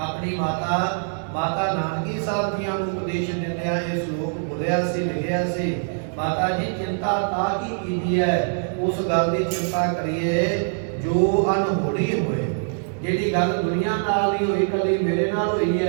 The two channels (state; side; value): silent; left; digital silence